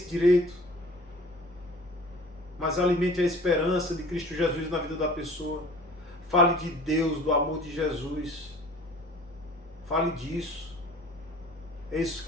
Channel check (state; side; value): normal; both; correlation 0.46